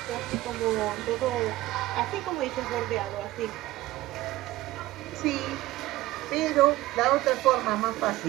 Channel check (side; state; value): left; quieter; 17.2 dB